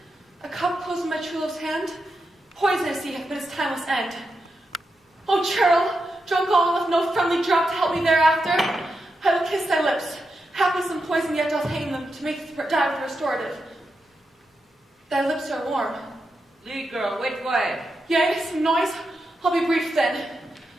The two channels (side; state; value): both; normal; correlation 0.87